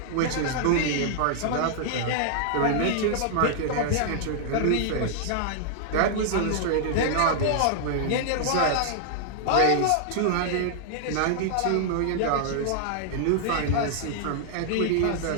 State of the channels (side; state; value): both; different; correlation -0.01